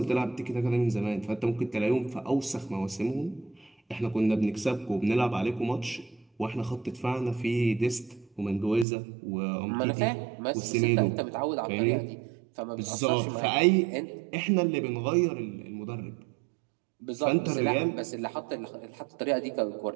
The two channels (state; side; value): drops out; left; at 8.8 s